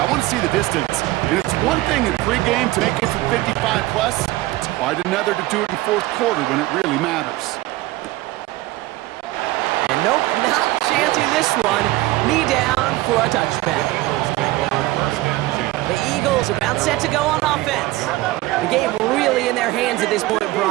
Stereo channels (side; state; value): left; quieter; 18.3 dB